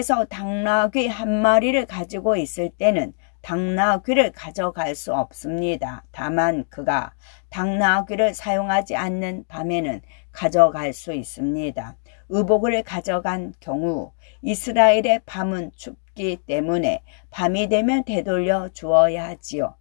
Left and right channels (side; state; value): right; silent; digital silence